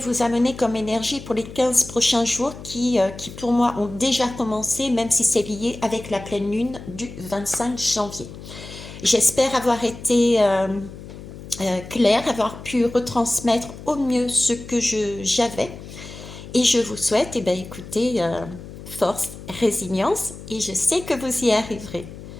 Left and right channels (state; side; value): noise; left; hum, 14 dB below the sound